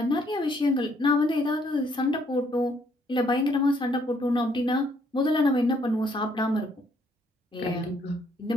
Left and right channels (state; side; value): normal; both; correlation 0.68